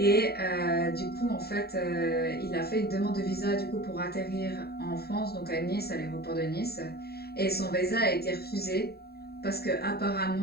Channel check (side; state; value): right; late; 0.46 ms